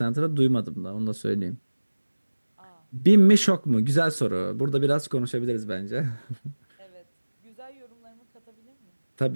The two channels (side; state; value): both; inverted; correlation -1.00